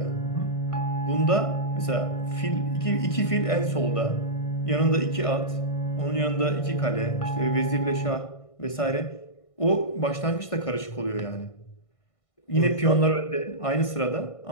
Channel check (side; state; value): right; late; 1.5 ms